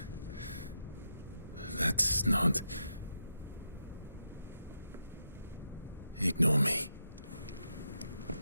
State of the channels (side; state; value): both; inverted; correlation -0.85